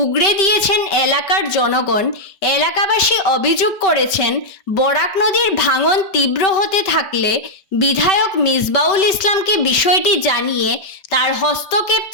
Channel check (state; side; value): late; right; 5.2 ms